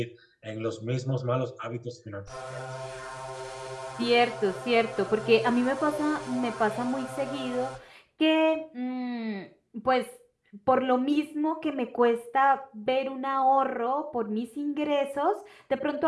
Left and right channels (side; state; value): both; identical; correlation 1.00